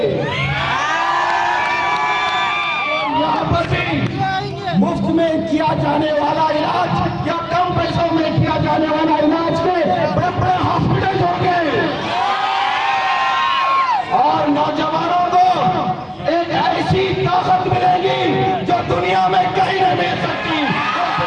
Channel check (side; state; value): both; identical; correlation 1.00